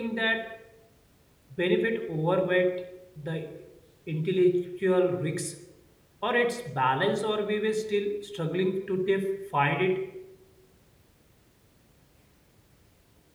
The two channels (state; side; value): identical; both; correlation 1.00